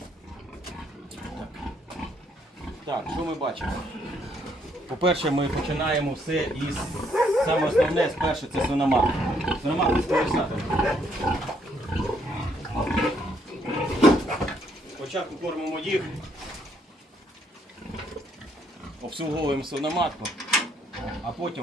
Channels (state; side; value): normal; both; correlation 0.70